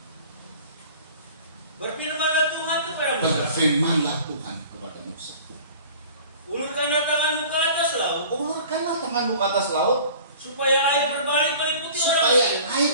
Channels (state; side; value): inverted; both; correlation -0.45